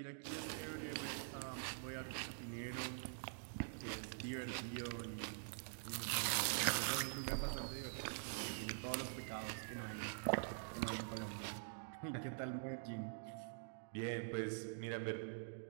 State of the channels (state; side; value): silent; left; digital silence